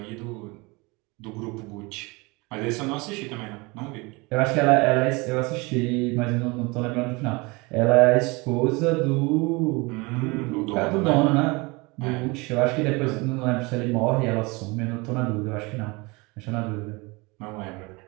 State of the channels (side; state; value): left; quieter; 25.9 dB